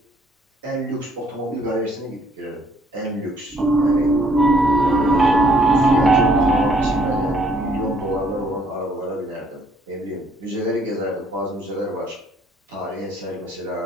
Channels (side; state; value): both; normal; correlation 0.64